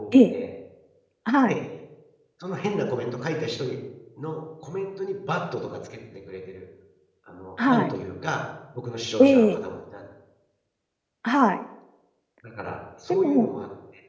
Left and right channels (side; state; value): both; identical; correlation 1.00